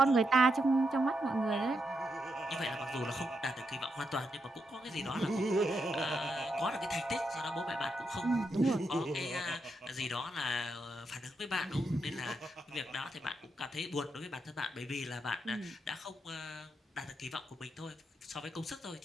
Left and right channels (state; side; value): normal; both; correlation 0.83